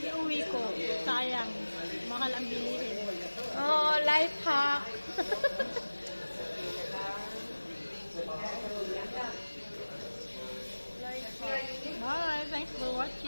ko. Sayang. Mahal ang bilihin. Oh, life hack. Bye. Thanks for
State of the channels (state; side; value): inverted; both; correlation -1.00